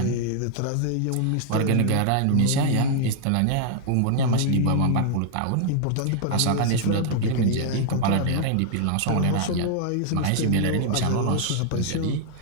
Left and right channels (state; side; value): different; both; correlation -0.01